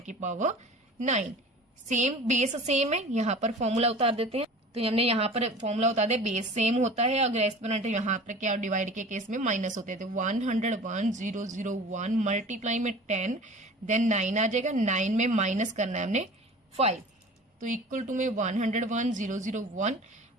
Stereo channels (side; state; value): both; normal; correlation 0.40